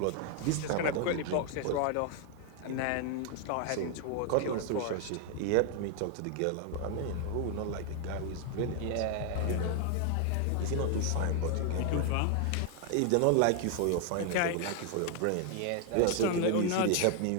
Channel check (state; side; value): different; both; correlation 0.00